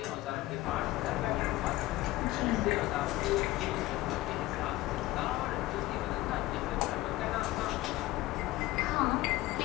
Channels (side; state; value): right; quieter; 17.5 dB